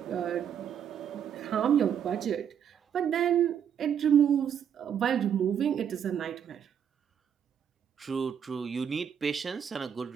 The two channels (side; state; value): left; quieter; 8.5 dB